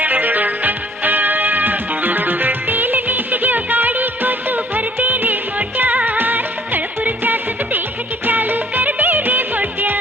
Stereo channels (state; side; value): normal; both; correlation 0.59